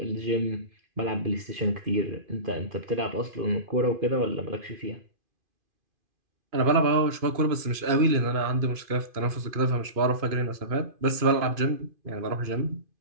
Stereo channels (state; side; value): late; left; 2.5 ms